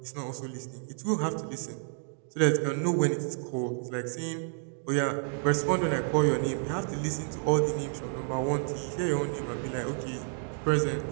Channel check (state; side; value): silent; left; 58 dB below the other